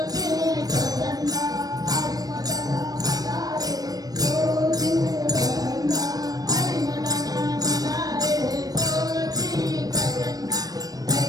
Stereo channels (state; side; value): late; left; 0.18 ms